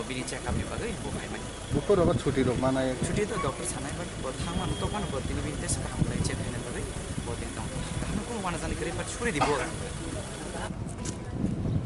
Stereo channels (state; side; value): identical; both; correlation 1.00